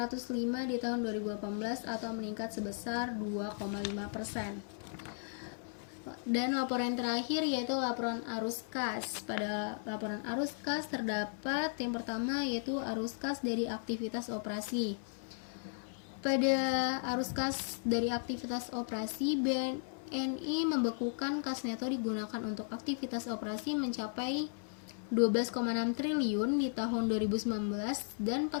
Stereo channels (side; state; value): right; silent; 54 dB below the other